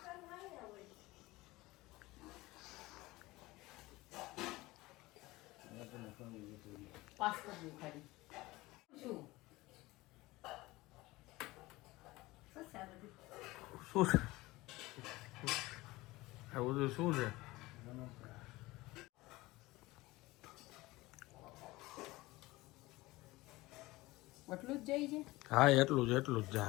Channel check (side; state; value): right; quieter; 20.0 dB